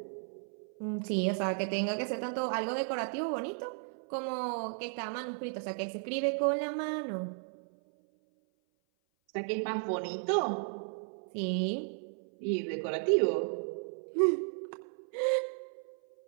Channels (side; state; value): left; silent; 55 dB below the other